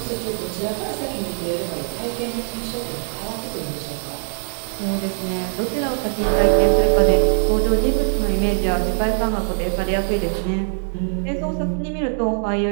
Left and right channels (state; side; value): silent; left; 64 dB below the other